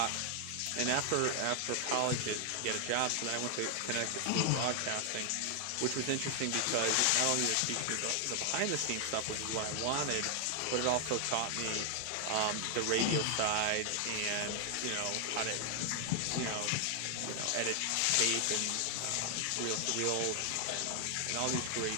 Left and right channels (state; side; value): different; both; correlation 0.00